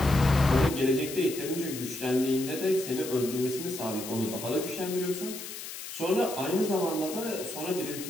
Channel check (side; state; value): left; noise; hiss, 10 dB below the sound